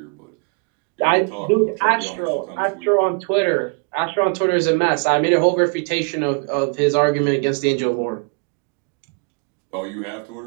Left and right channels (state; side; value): quieter; left; 36.5 dB